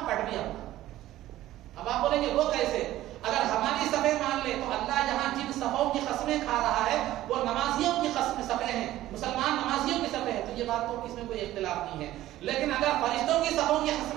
پٹ بھی اپنا. اب آپ بولیں گے وہ کیسے؟ اگر ہماری صفیں مان لے تو اللہ یہاں جن صفوں کی قسمیں کھا رہا ہے وہ نمازیوں کی صفیں ہیں، مسلمان نمازیوں کی صفیں ہیں، تو یہ بات تو اس میں کوئی اختلاف نہیں ہے. لیکن اگر فرشتوں کی صفوں کی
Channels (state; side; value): quieter; left; 14.7 dB